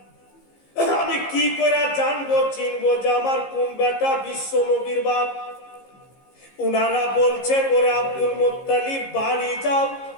আমি কি করে জানবো চিনবো যে আমার কোন বেটা বিশ্ব নবীর বাপ? উনারা বলছেন, ওরে আব্দুল মুত্তালিব, বাড়ি যাও,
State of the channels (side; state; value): right; late; 15 ms